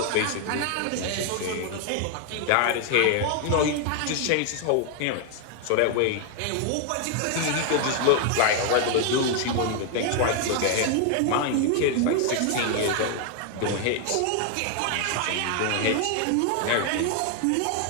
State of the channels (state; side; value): different; both; correlation 0.00